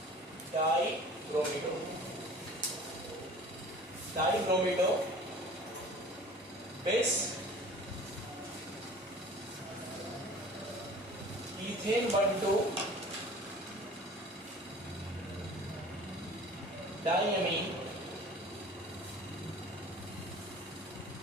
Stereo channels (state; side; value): normal; both; correlation 0.44